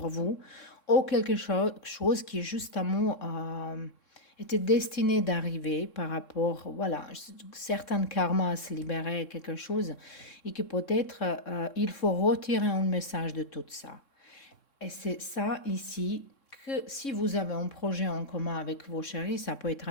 vous, ou quelque chose qui justement était destiné d'arriver par rapport, voilà, certains karmas à se libérer, quelque chose, et que peut-être il faut retirer un message de tout ça. Et c'est ça ici que si vous avez un projet en commun avec vos chéris, ça peut être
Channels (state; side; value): late; right; 3.6 ms